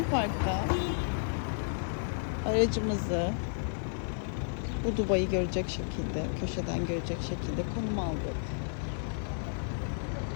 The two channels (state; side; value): silent; right; 56 dB below the other